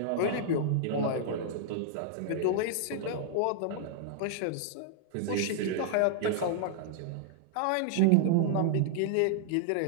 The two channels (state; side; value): different; both; correlation -0.01